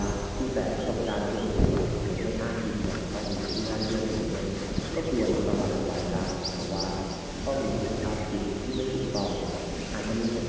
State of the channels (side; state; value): both; identical; correlation 1.00